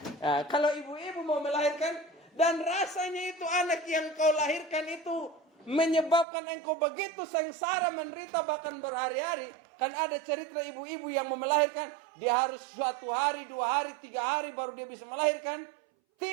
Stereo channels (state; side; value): drops out; left; at 6.2 s